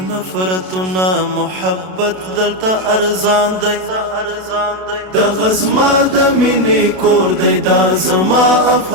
نفرتونه، محبت دلته ارزان دی. دغه زما د مینې کور دی، دا زما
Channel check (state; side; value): late; left; 32 ms